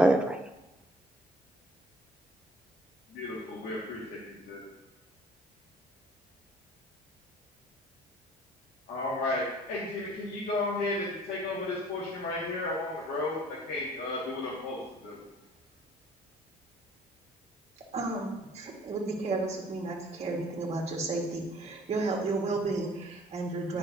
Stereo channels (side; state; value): both; normal; correlation 0.53